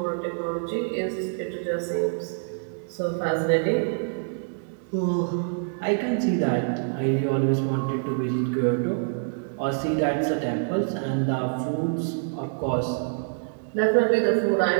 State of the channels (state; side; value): silent; left; digital silence